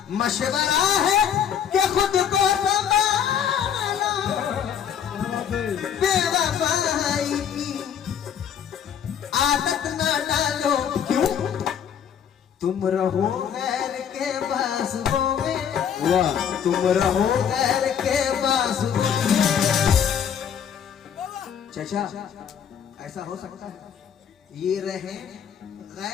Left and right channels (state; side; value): quieter; right; 8.4 dB